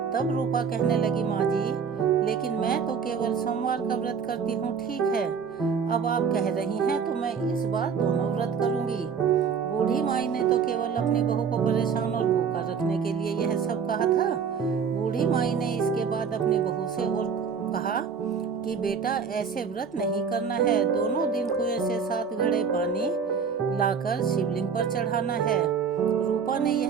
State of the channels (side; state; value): left; quieter; 6.3 dB